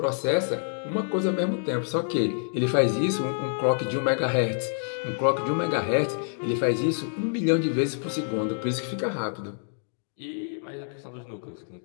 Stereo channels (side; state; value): right; silent; digital silence